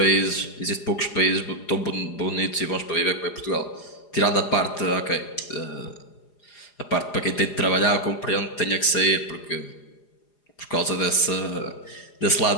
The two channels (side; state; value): right; late; 4.9 ms